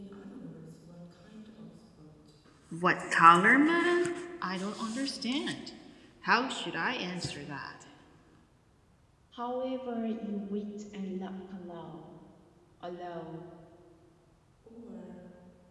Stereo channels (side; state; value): both; identical; correlation 1.00